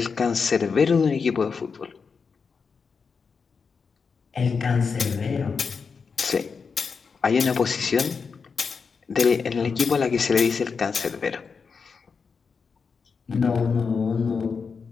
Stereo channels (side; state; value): right; quieter; 5.4 dB